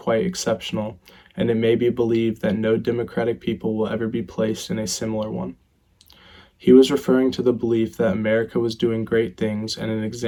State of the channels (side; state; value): both; identical; correlation 1.00